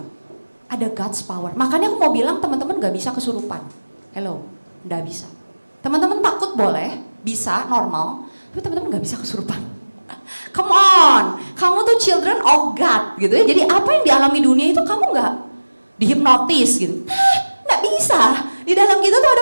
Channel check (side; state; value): both; inverted; correlation -1.00